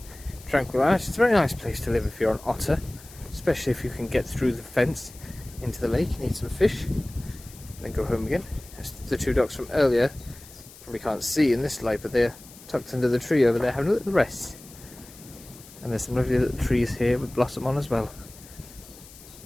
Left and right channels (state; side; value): noise; left; hiss, 20 dB below the sound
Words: tranquil. It's a very nice place to live if you're an otter, especially if you can get through the fence into the lake and eat some fish and then go home again. That's the two ducks from earlier. Probably can't see in this light, but they're tucked under the tree over there having a little rest. And there's some lovely little trees here with blossom on as well.